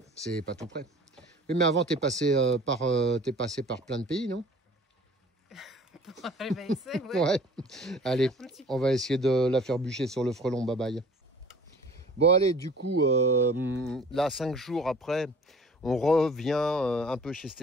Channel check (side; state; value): both; normal; correlation 0.48